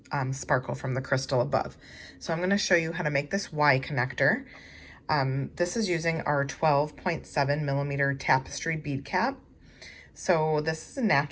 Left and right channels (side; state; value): both; identical; correlation 1.00